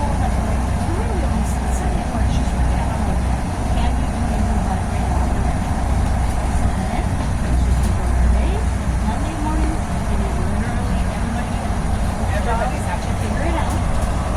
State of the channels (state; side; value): identical; both; correlation 1.00